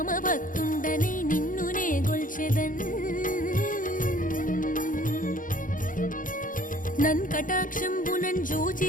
భక్తుండనై నిన్నునే గొల్చెదన్ నన్ కటాక్షంబునన్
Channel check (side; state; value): right; late; 0.39 ms